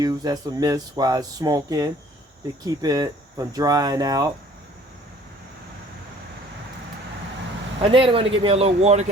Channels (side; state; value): both; normal; correlation 0.53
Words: as a mist while it's smoking to keep it from drying out. And then I'm going to get me a little water